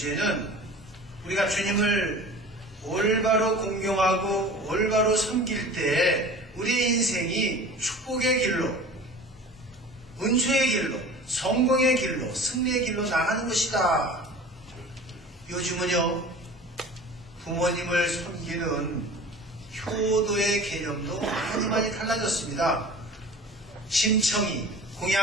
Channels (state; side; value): normal; both; correlation 0.41